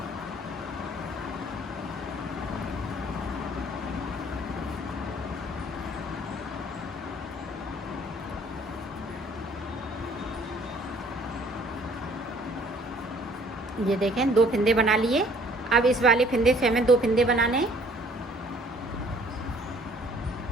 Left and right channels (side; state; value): both; normal; correlation 0.57